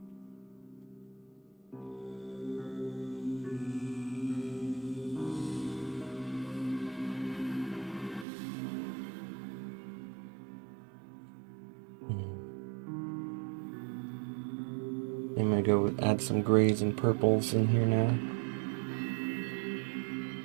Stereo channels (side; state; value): left; drops out; at 8.2 s